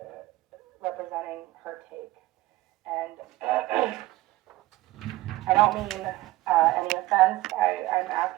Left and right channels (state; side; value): quieter; left; 17.8 dB